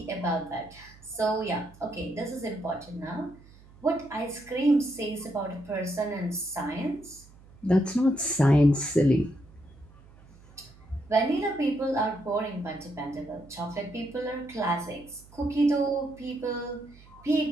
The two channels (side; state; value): right; noise; hum, 23 dB below the sound